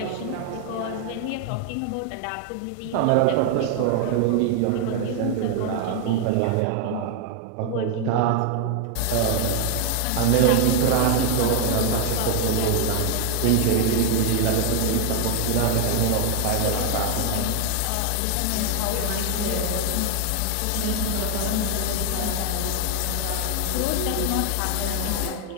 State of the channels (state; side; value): different; both; correlation 0.01